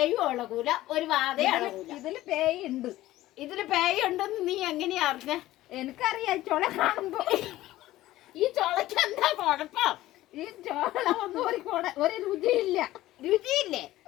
ഇളകൂല, ഒരു വാതയും ഇളകൂല. ഇതില് പേയുണ്ട്. ഇതില് പേയുണ്ടെന്ന് നീ എങ്ങനെയാ അറിഞ്ഞ? എനിക്കറിയാം. ചുള കാണുമ്പോ. ഈ ചുളക്ക് എന്താ കുഴപ്പം? ഈ ചോള ഒന്നും ഒരു രുചിയില്ല. രുചിയില്ലേ?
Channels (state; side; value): quieter; right; 15.8 dB